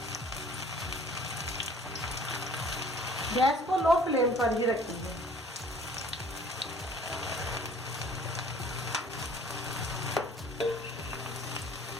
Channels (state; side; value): normal; both; correlation 0.52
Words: गैस को लो फ्लेम पर ही रखेंगे।